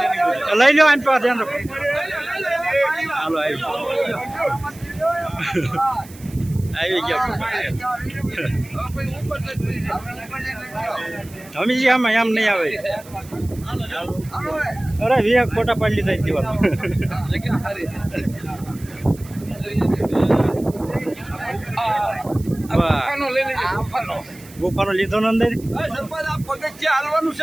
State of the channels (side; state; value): right; noise; hiss, 21 dB below the sound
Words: લઈ લો આઈન પા ધ્યાન રાખો. હાલો આવી ગયા. હમીજી આમાં એમ નહીં આવે. અરે વીએ ફોટા પાડી લીધા દીવાલ. ગુફાનો લીધો ને અંદર. સરપંચ આ પગથિયા હાલવાનું